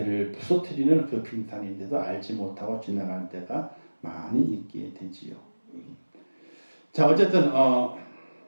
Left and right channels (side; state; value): both; inverted; correlation -1.00